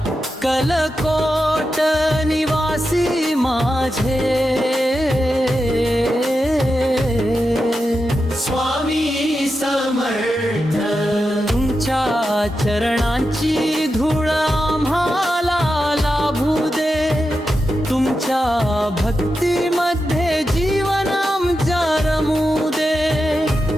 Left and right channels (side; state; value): both; normal; correlation 0.89